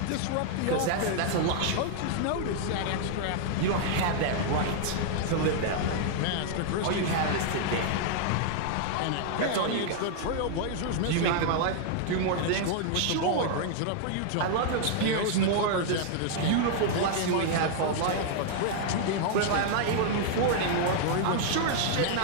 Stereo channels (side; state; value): both; different; correlation -0.01